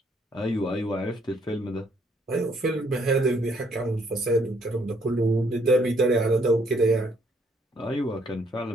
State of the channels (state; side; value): normal; both; correlation 0.68